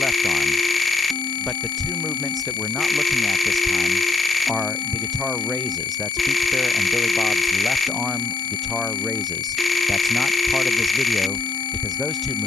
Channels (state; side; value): quieter; right; 3.4 dB